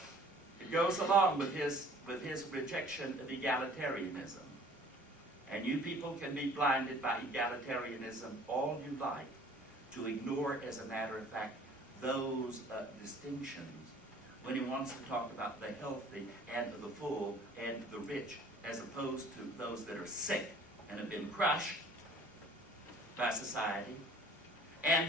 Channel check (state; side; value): normal; both; correlation 0.52